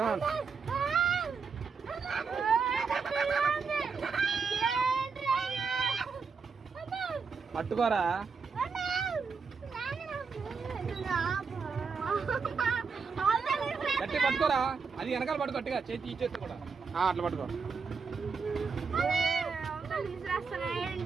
పట్టుకోరా గట్టి పట్టుకోరా అది వెనకాల పట్టుకో గట్టిగా చేతి ఈ చేతి కూడా అట్లా పట్టుకో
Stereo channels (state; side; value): quieter; left; 5.3 dB